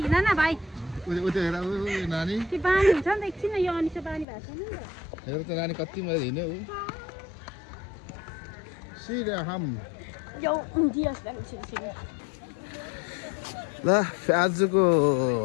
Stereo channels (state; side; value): drops out; right; at 4.2 s